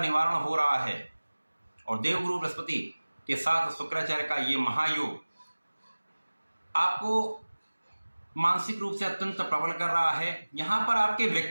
हो रहा है। और देवगुरु बृहस्पति के साथ शुक्राचार्य का ये महायोग आपको मानसिक रूप से अत्यंत प्रबल कर रहा है। यहाँ पर आपके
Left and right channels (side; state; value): both; inverted; correlation -1.00